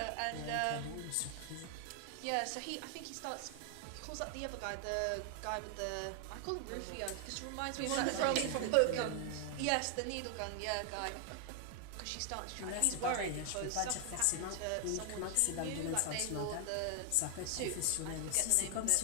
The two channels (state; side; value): different; both; correlation 0.00